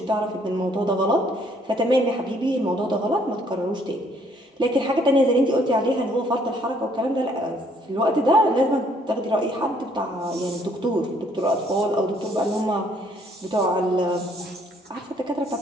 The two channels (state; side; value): normal; both; correlation 0.64